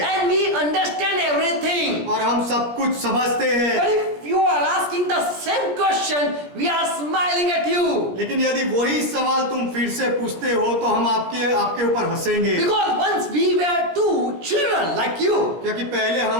And we understand everything. और हम सब कुछ समझते But हैं। if you are asking the same question, we are smiling at you. लेकिन यदि वही सवाल तुम फिर से पूछते हो तो हम आपके ऊपर हंसेंगे, Because once we were two children like you, क्योंकि पहले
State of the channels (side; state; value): left; late; 17 ms